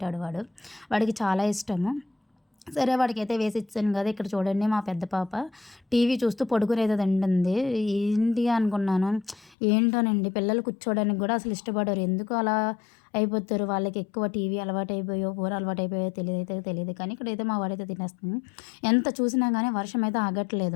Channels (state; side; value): drops out; right; at 9.6 s